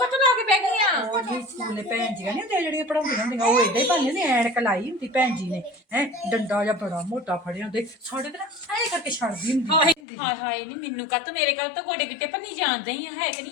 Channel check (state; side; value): drops out; right; at 10.0 s